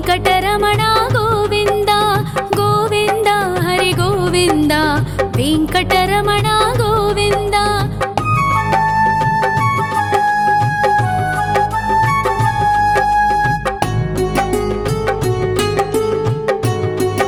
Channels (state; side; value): identical; both; correlation 1.00